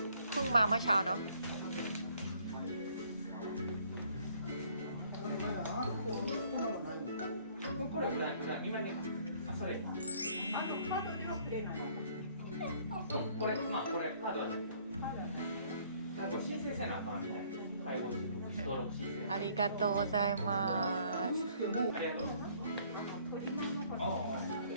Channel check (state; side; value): inverted; both; correlation -0.61